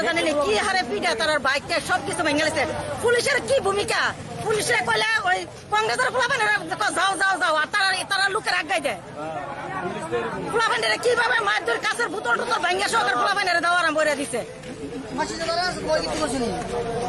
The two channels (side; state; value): both; identical; correlation 1.00